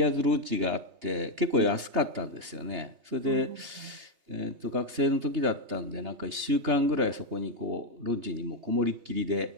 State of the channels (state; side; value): late; left; 3.3 ms